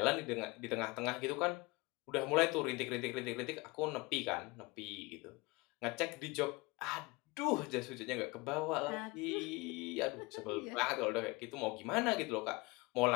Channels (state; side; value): quieter; right; 24.0 dB